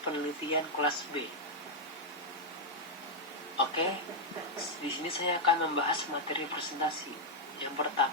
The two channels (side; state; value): both; normal; correlation -0.02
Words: penelitian kelas B. Oke, di sini saya akan membahas materi presentasi. Yang